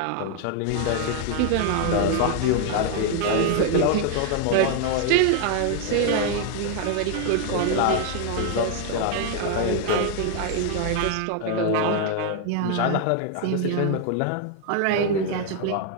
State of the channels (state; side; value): different; both; correlation 0.00